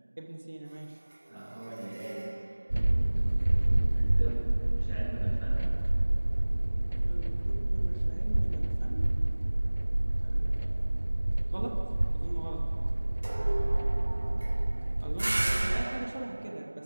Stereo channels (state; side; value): inverted; both; correlation -1.00